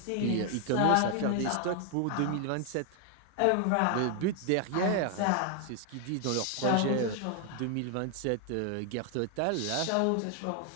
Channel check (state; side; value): different; both; correlation 0.00